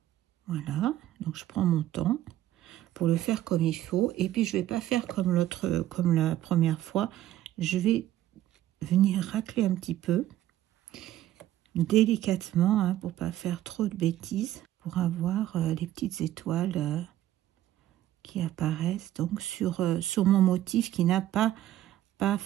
Voilà, donc je prends mon temps pour le faire comme il faut, et puis je vais pas faire comme la première fois. Je vais venir racler un petit peu délicatement, hein, pour pas faire trop de bêtises, pour avoir les petites étoiles qui apparaissent donc sur mon motif qui n'a pas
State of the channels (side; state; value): left; quieter; 13.4 dB